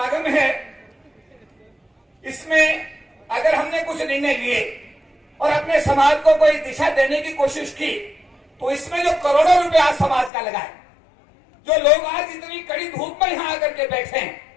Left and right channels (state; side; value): drops out; right; at 10.3 s